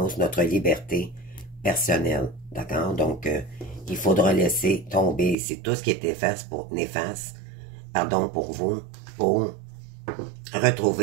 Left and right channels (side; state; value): left; drops out; at 5.4 s